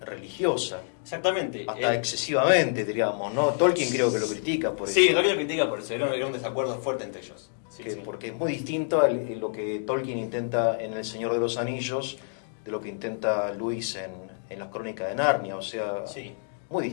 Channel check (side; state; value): right; silent; digital silence